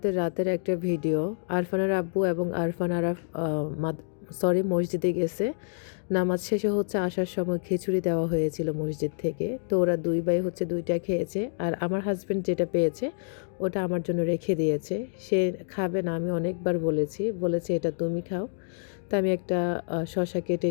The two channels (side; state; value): right; silent; digital silence